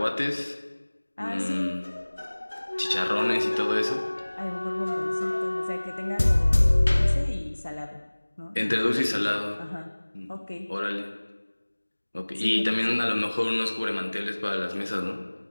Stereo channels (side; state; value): both; inverted; correlation -1.00